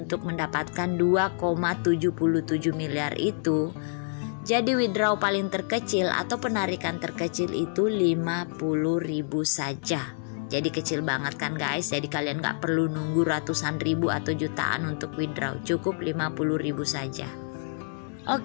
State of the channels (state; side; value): silent; right; digital silence